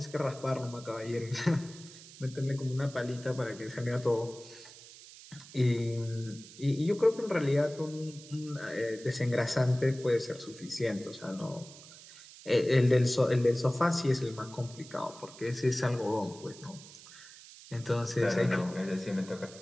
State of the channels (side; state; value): right; noise; hiss, 18 dB below the sound